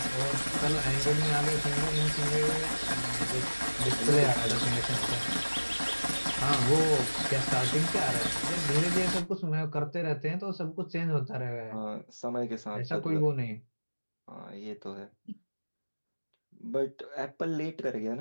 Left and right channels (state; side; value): inverted; both; correlation -1.00